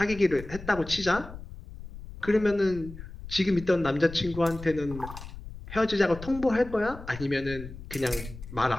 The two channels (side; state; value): left; noise; rumble, 13 dB below the sound